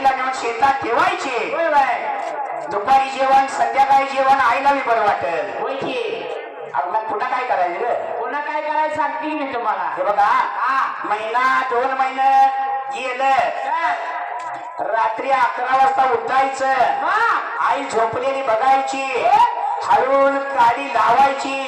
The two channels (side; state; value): both; identical; correlation 1.00